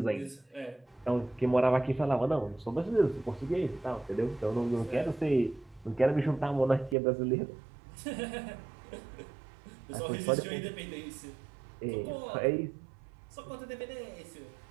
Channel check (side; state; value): left; drops out; at 7.0 s